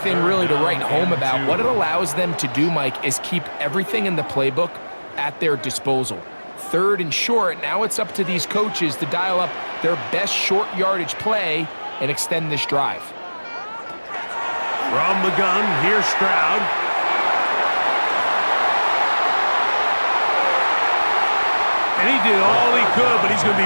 really to write home about, what it allows them to do, Mike, is keep everything in the playbook at their disposal. 3rd and short, now it's up to these coaches to dial up their best short yardage play and extend this drive. From the gun, here's Stroud. And he did all he could, but he's going to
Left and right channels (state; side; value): inverted; both; correlation -1.00